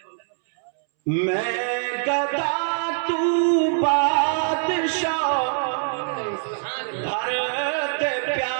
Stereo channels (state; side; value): silent; left; 63 dB below the other